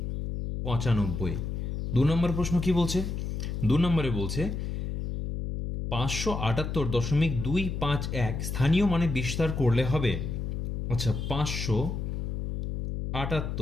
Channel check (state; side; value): noise; left; hum, 3 dB below the sound